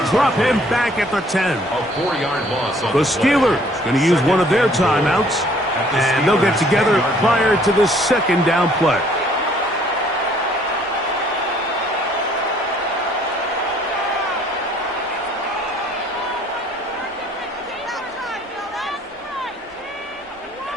drop him back at the 10. A 4-yard loss. The Steelers going to use one of their timeouts, and they'll get together prior to the second down play.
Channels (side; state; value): both; normal; correlation 0.60